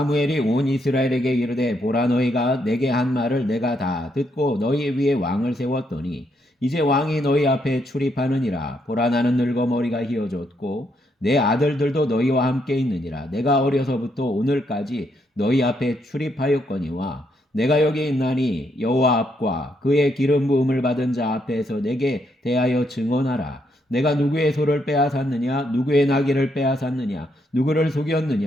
온 이스라엘에게 이르되 보라 너희가 내게 한 말을 내가 다 듣고 너희 위에 왕을 세웠더니 이제 왕이 너희 앞에 출입하느니라. 보라 나는 늙어 머리가 휘어졌고 내 아들들도 너희와 함께 있느니라. 내가 어려서부터 오늘까지 너희 앞에 출입하였거니와 내가 여기 있나니 여호와 앞과 그의 기름 부음을 받은 자 앞에서 내게 대하여 증언하라. 내가 누구의 소를 빼앗았느냐 누구의 나귀를 빼앗았느냐 누구를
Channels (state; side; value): normal; both; correlation 0.76